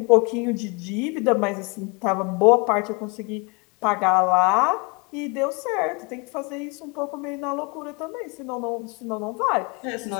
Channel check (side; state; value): right; quieter; 30.2 dB